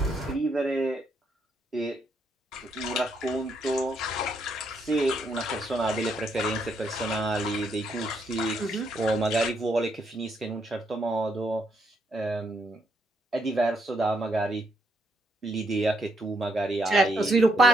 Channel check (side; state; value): both; normal; correlation 0.75